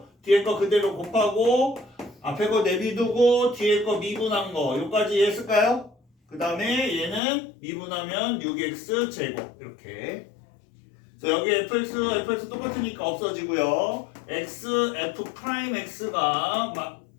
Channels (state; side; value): drops out; right; at 7.2 s